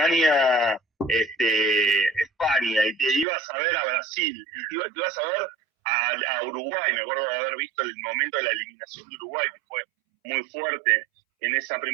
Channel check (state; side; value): drops out; left; at 3.2 s